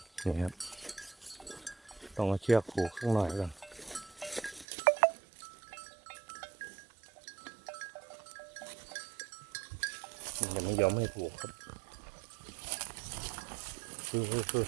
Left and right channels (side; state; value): left; drops out; at 4.7 s